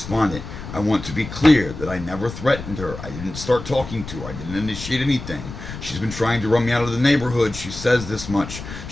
I want to be clear that I never threatened her. I didn't start talking to her. I didn't initiate anything. She's been trying to run me out of the neighborhood. She says this much.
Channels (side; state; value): left; noise; rumble, 11 dB below the sound